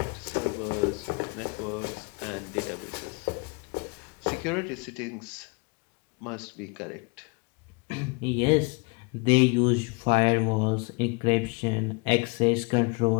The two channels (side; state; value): right; quieter; 30.7 dB